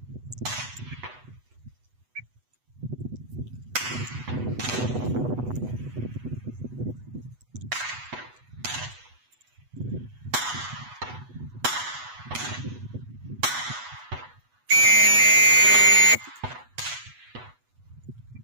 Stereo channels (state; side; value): late; left; 8.1 ms